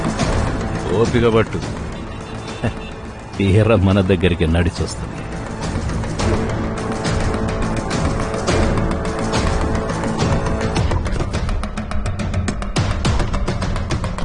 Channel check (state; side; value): identical; both; correlation 1.00